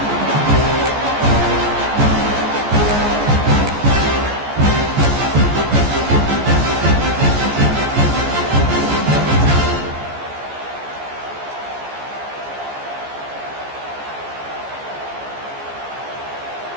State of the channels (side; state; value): left; late; 14 ms